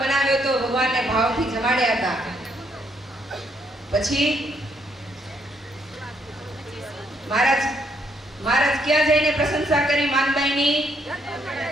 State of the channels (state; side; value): normal; both; correlation 0.72